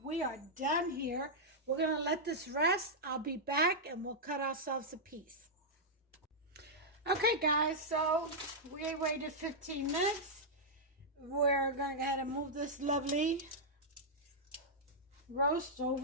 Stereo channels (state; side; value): normal; both; correlation -0.08